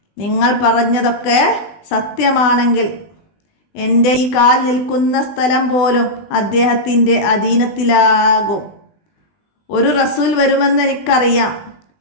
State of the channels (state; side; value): late; right; 20 ms